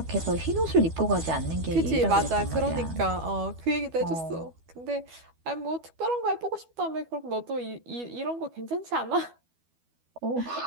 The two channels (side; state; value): left; late; 12 ms